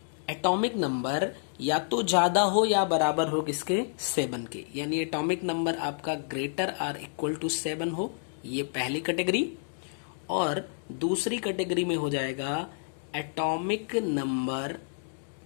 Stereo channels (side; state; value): right; silent; digital silence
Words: नंबर या तो ज्यादा हो या बराबर हो किसके, 7 के। यानी एटॉमिक नंबर आपका ग्रेटर आर इक्वल टू 7 हो, ये पहली कैटेगरी। और दूसरी कैटेगरी में हो जाएगा atomic number